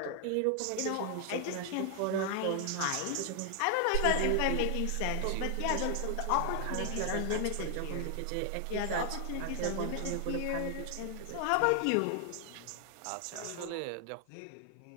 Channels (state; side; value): different; both; correlation 0.00